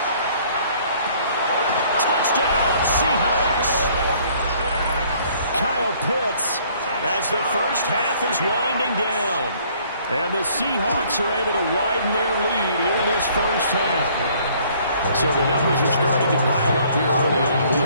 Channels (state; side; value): inverted; both; correlation -0.60